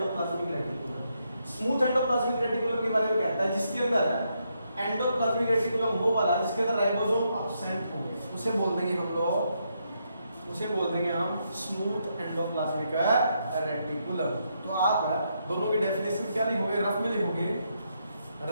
reticulum. Smooth endoplasmic reticulum के बारे में कहता है जिसके अंदर एंडोप्लाज्मिक रेटिकुलम वो वाला जिसके अंदर राइबोसोम एब्सेंट होंगे, उसे बोल देंगे हम लोग, उसे बोल देंगे हम स्मूथ एंडोप्लाज्मिक रेटिकुलम। तो आप दोनों की डेफिनेशन क्या लिखोगे? रफ में लिखोगे,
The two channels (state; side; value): inverted; both; correlation -0.79